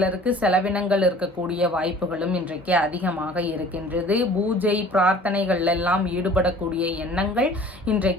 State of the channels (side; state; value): both; normal; correlation 0.48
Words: செலவினங்கள் இருக்கக்கூடிய வாய்ப்புகளும் இன்றைக்கு அதிகமாக இருக்கின்றது. பூஜை பிரார்த்தனைகள் எல்லாம் ஈடுபடக்கூடிய எண்ணங்கள்